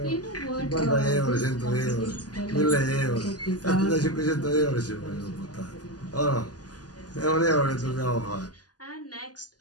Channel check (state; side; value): late; right; 0.68 ms